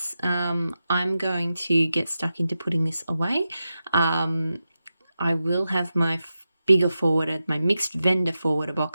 I'm going to get stuck into putting this away. I will have my bigger forwarder, my mixed vendor forwarder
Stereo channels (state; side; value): inverted; both; correlation -0.90